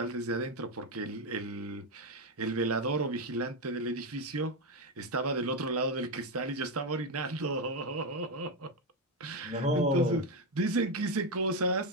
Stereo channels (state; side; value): normal; both; correlation 0.08